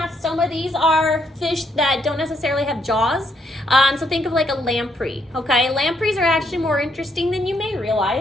these are fish that don't necessarily have jaws. So think of like a lamprey, okay? Lampreys are actually more interesting than you may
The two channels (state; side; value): normal; both; correlation 0.74